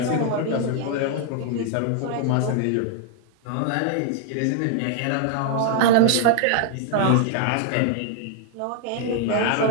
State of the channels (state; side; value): different; both; correlation 0.00